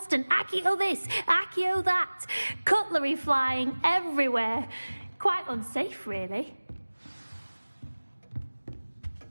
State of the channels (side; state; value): both; inverted; correlation -1.00